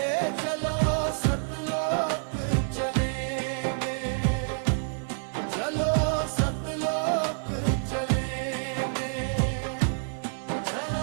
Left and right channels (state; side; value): silent; left; 59 dB below the other